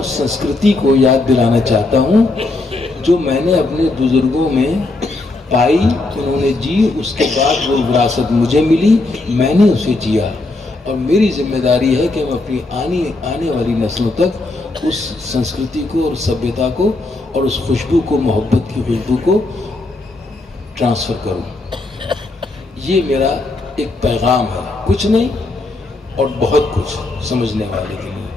سنسکرتی کو یاد دلانا چاہتا ہوں جو میں نے اپنے بزرگوں میں پائی، انہوں نے جی، اس کے بعد وہ وراثت مجھے ملی، میں نے اسے جیا، اور میری ذمہ داری ہے کہ میں اپنی آنے والی نسلوں تک اس سنسکرتی کو اور سبھیتا کو اور اس خوشبو کو، محبت کی خوشبو کو ٹرانسفر کروں۔ یہ میرا ایک پیغام ہے، کچھ نہیں اور بہت کچھ سمجھنے والے کے لیے۔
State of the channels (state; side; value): quieter; right; 3.0 dB